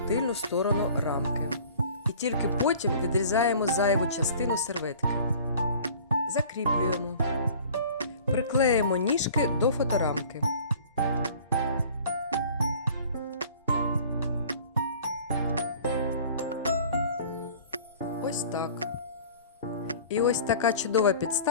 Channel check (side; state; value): both; inverted; correlation -0.47